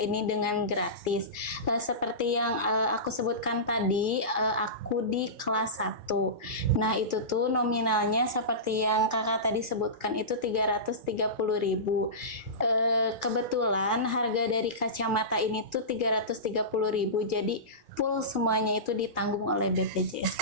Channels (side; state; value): left; late; 2.4 ms